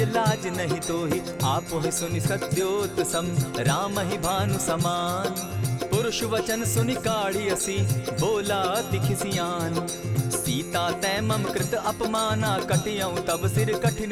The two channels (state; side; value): noise; right; hum, 23 dB below the sound